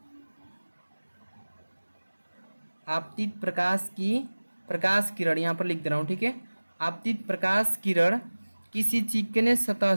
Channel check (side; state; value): both; inverted; correlation -1.00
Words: आपतित प्रकाश किरण यहां पर लिख दे रहा हूं। ठीक है, आपतित प्रकाश किरण किसी चिकने सतह